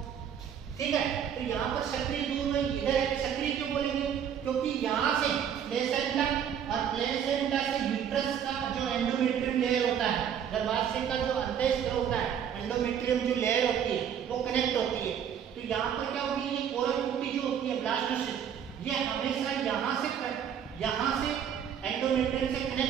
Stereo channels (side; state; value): left; quieter; 8.6 dB